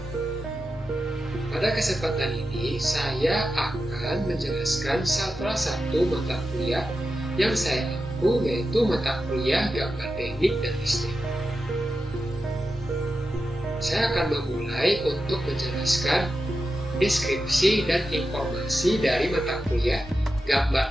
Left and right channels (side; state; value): both; normal; correlation 0.90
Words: Pada kesempatan ini, saya akan menjelaskan salah satu mata kuliah yang saya ampu, yaitu mata kuliah gambar teknik dan listrik. Saya akan memulai untuk menjelaskan deskripsi dan informasi dari mata kuliah